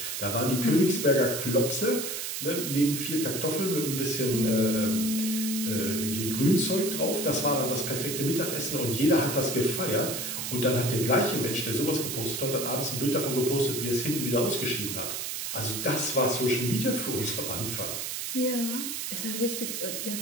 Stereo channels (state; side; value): noise; right; hiss, 4 dB below the sound